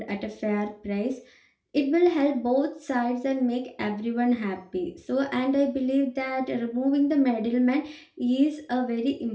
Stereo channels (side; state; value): both; identical; correlation 1.00